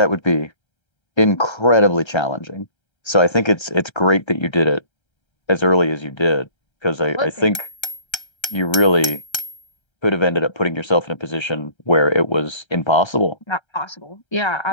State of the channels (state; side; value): late; right; 1.3 ms